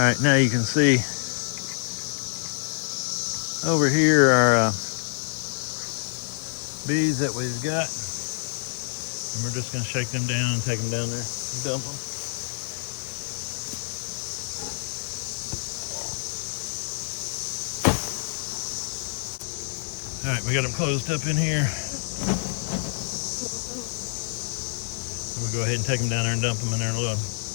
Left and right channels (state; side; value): silent; right; 60 dB below the other